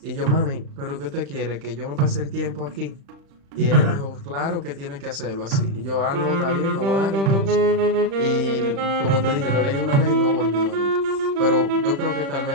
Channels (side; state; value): left; late; 36 ms